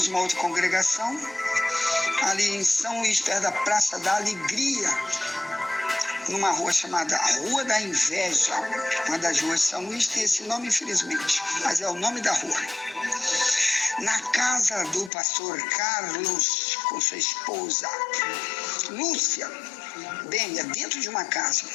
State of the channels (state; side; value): drops out; right; at 15.1 s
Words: uma outra congregação, ali em São Luís, perto da Praça da Alegria, numa rua chamada Rua da Inveja. Uma das ruas de São Luís tem esse nome, infelizmente, mas é o nome da rua. Na casa do pastor Carlos, com sua esposa Lúcia, bem, é dentro de uma casa.